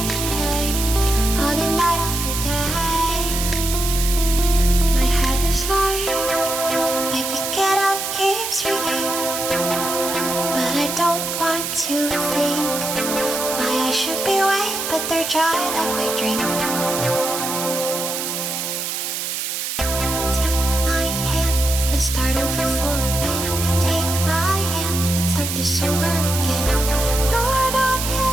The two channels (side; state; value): right; noise; hiss, 3 dB below the sound